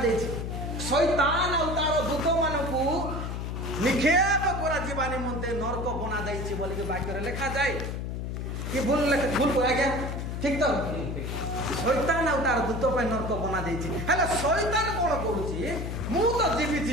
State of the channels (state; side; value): noise; left; hum, 4 dB below the sound